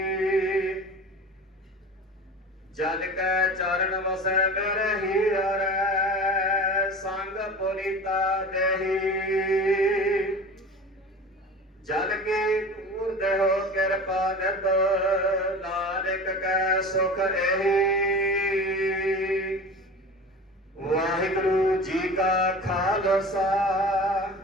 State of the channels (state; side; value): normal; both; correlation 0.35